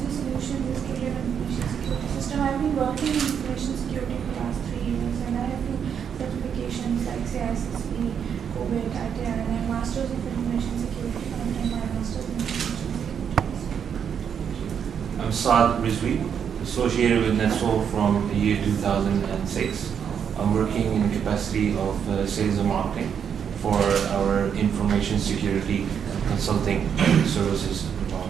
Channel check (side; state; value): left; quieter; 7.8 dB